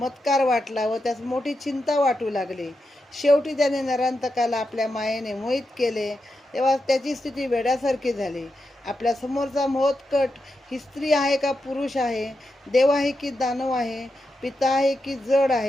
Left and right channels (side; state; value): both; normal; correlation 0.87